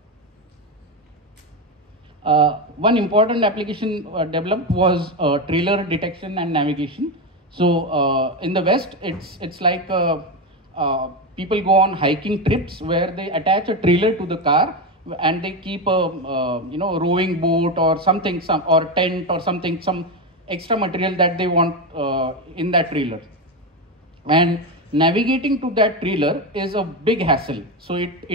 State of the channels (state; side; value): normal; both; correlation 0.13